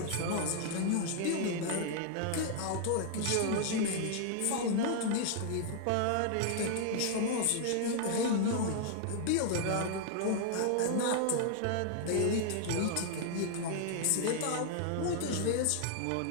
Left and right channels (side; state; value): both; different; correlation 0.00